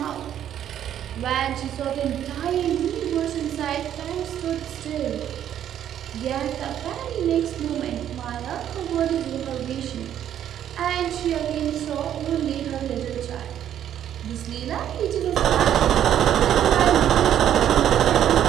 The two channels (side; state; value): left; quieter; 10.4 dB